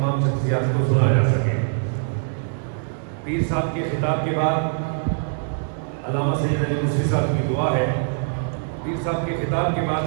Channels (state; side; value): silent; left; digital silence